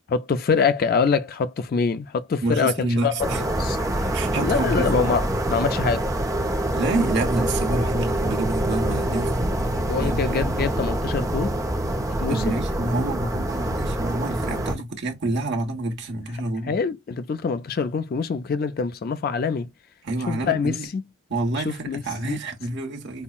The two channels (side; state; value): both; normal; correlation 0.52